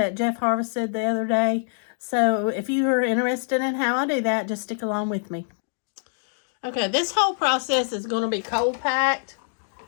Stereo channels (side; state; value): right; silent; digital silence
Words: Jeff harvested the other day. So if you are interested in how I do that, just stick along with me. Okay, this whole process is going to be cold packed.